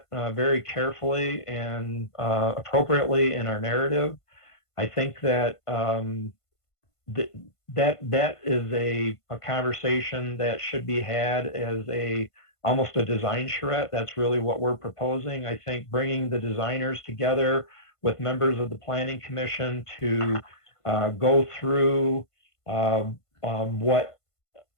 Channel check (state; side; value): late; right; 1.5 ms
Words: very carefully and appropriately in our narrative. I think that that is a conversation that should be had as almost a design charrette. That's really what we're proposing. I think bringing the designers together with members of the Planning Commission to go through what